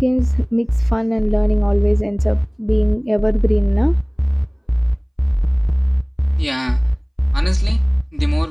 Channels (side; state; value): both; identical; correlation 1.00